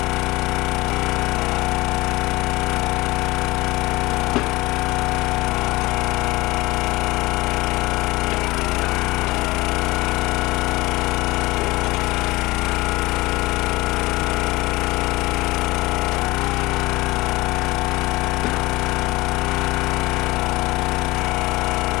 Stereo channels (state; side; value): quieter; right; 21.0 dB